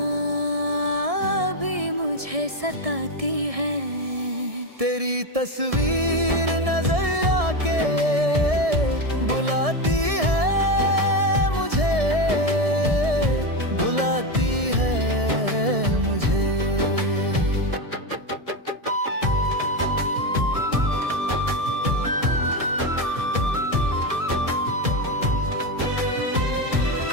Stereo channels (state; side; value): late; left; 1.7 ms